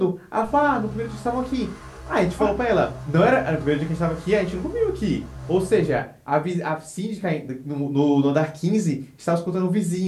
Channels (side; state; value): both; identical; correlation 1.00